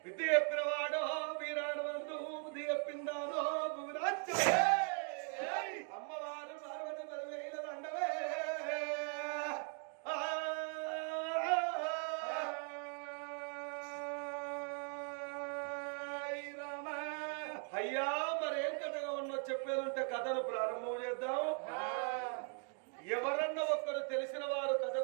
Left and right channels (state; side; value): quieter; left; 39.7 dB